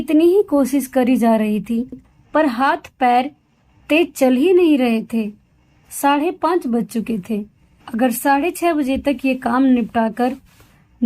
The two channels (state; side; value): identical; both; correlation 1.00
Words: ही कोशिश करी जा रही थी, पर हाथ पैर तेज चल ही नहीं रहे थे। 5:30 बज चुके थे। अगर 6:30 बजे तक ये काम निपटाकर